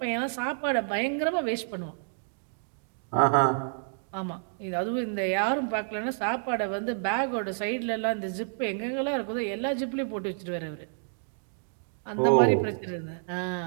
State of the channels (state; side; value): silent; left; digital silence